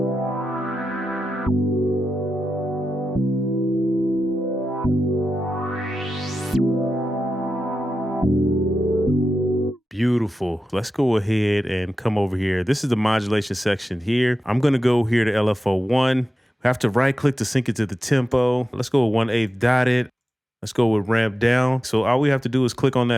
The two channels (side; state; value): both; normal; correlation 0.91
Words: Beautiful. Let's go ahead and come over here. This is the modulation section here. I'm going to go here to LFO1. We have to right click to sync it to the tempo. Let's go with 1/8 dotted. Let's go with ramp down. So all we have to do is click on